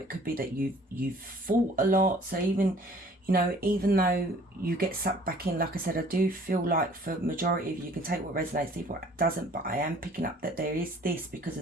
could be that you've fought a lot. So even, you know, even though you get sucked back in, like I said, I do feel like for majority of you, you can take what resonates, leave what doesn't. But I am picking up that there is this, because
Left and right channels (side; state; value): both; normal; correlation 0.54